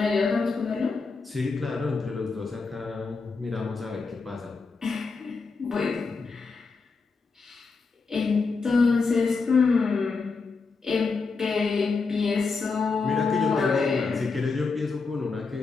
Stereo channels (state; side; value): quieter; right; 4.4 dB